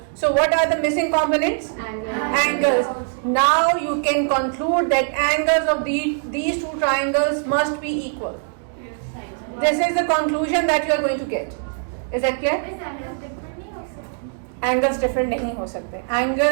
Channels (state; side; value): silent; left; 64 dB below the other